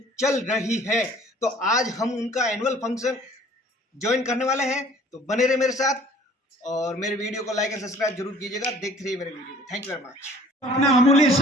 चल रही है। तो आज हम उनका एनुअल फंक्शन ज्वाइन करने वाले हैं, तो बने रहे मेरे साथ और मेरे वीडियो को लाइक एंड सब्सक्राइब जरूर कीजिएगा। देखते रहिए मेरे वीडियो को। Thank you very much. अपना अमूल्य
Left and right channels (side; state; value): both; normal; correlation 0.53